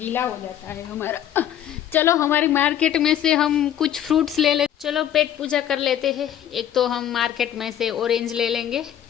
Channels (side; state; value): right; quieter; 10.6 dB